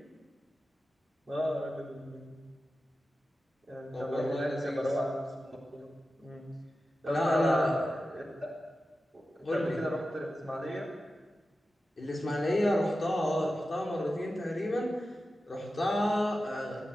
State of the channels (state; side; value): normal; both; correlation 0.93